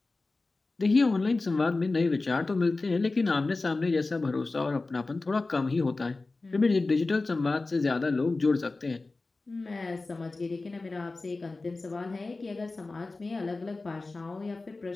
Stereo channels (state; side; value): quieter; right; 3.4 dB